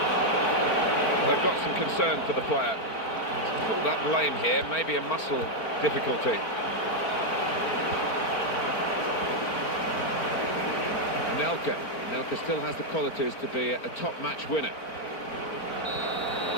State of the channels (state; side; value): late; right; 4.4 ms